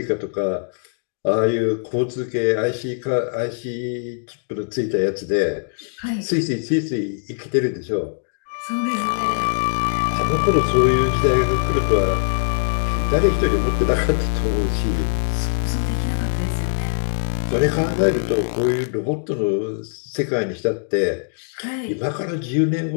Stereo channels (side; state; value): right; silent; 58 dB below the other